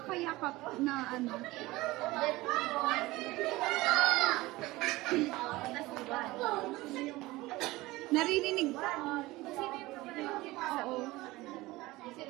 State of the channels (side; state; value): left; quieter; 19.6 dB